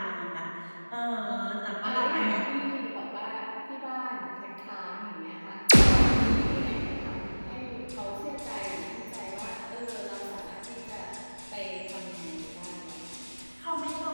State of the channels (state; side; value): inverted; both; correlation -1.00